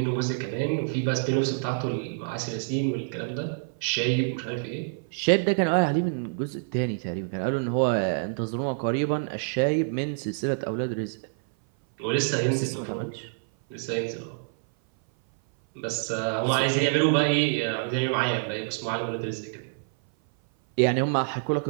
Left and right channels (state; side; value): silent; left; 57 dB below the other